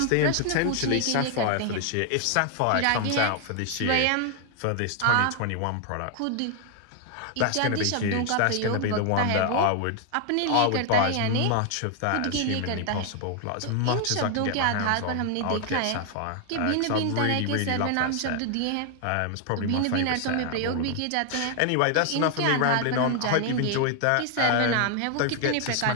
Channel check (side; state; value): both; different; correlation 0.00